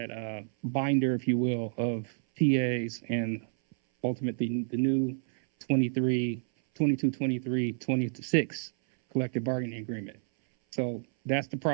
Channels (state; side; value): silent; left; 58 dB below the other